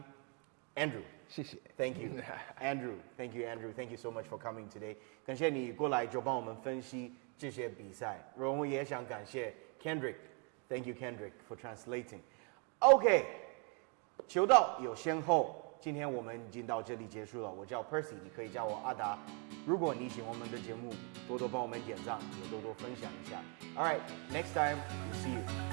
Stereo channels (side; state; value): left; quieter; 36.4 dB